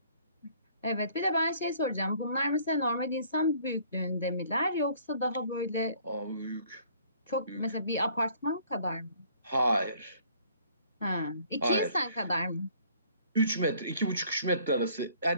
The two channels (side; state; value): both; inverted; correlation -0.57